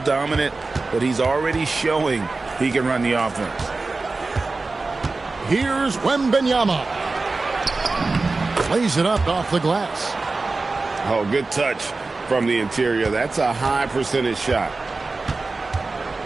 but he's already showing he can run the offense. Here's Wembanyama. Plays it up off the glass. Oh, good touch from the interior. That's a high percentage shot.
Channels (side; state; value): left; quieter; 3.7 dB